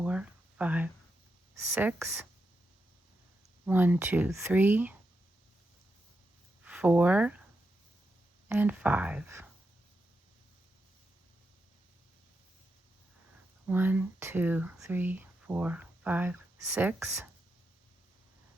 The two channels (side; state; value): both; normal; correlation 0.85